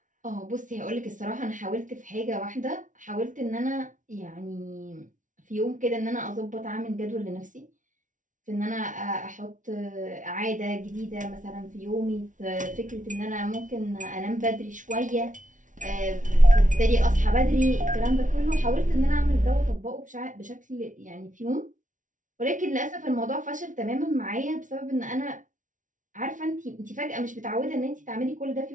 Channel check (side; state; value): left; late; 0.37 ms